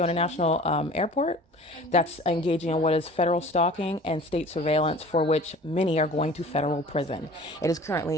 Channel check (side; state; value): both; normal; correlation 0.44